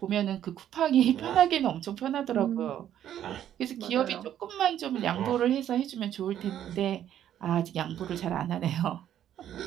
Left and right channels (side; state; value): left; quieter; 10.8 dB